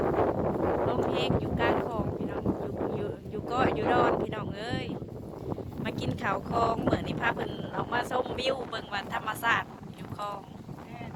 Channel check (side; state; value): both; identical; correlation 1.00